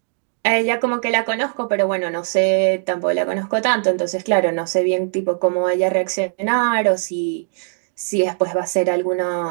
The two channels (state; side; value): silent; left; 66 dB below the other